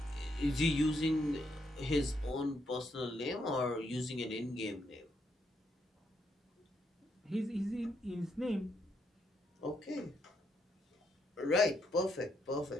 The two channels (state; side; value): normal; both; correlation 0.77